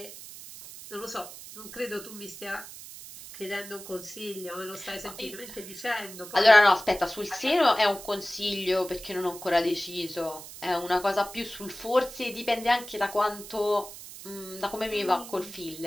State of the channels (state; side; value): noise; right; hiss, 14 dB below the sound